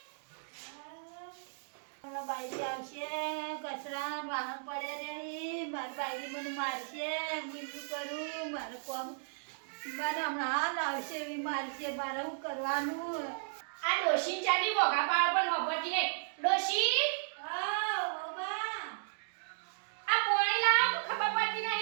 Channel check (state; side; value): silent; left; digital silence